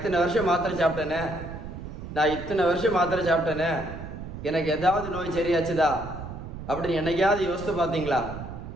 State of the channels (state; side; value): noise; right; rumble, 10 dB below the sound